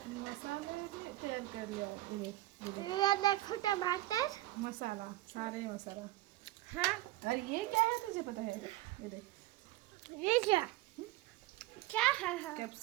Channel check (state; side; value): quieter; left; 17.3 dB